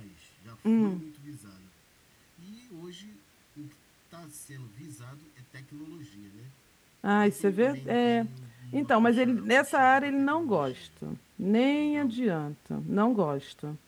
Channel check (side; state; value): both; identical; correlation 1.00